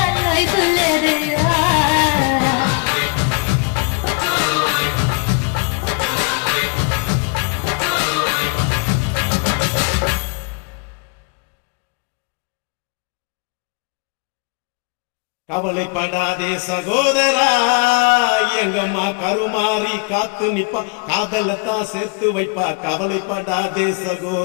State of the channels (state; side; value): quieter; right; 31.2 dB